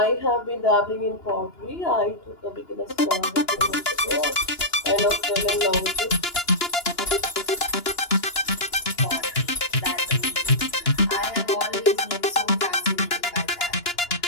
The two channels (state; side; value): late; right; 2.9 ms